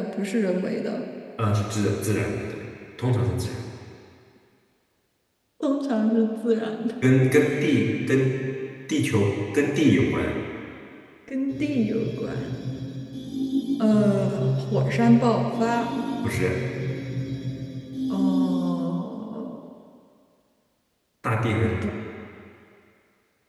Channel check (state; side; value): identical; both; correlation 1.00